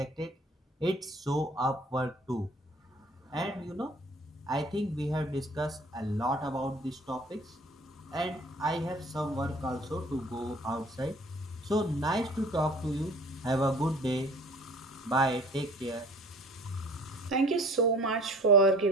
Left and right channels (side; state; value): both; normal; correlation 0.49